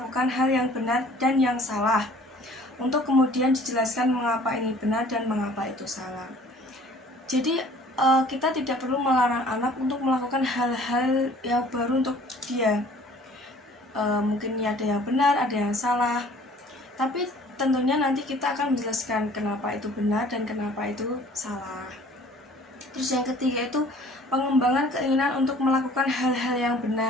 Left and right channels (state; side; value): normal; both; correlation 0.52